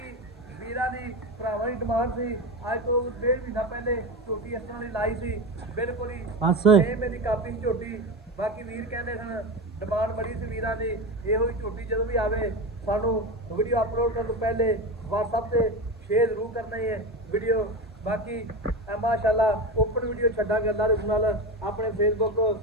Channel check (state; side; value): normal; both; correlation 0.21